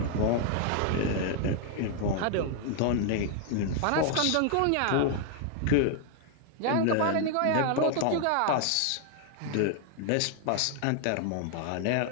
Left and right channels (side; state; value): both; different; correlation 0.00